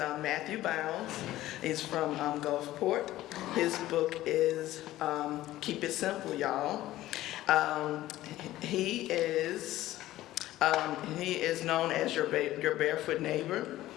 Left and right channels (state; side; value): quieter; right; 15.3 dB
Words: Bounds. He's from Gulfport. His book is Keep It Simple, Y'all. He is known as your Barefoot neighbor,